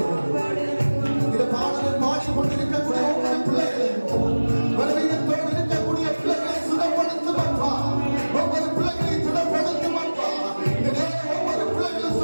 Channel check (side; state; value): both; inverted; correlation -1.00